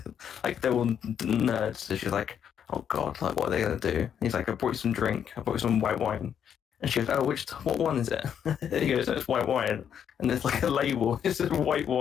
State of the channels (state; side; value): quieter; right; 8.6 dB